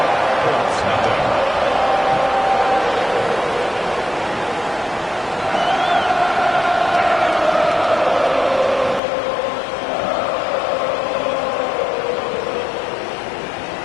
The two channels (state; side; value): drops out; right; at 9.0 s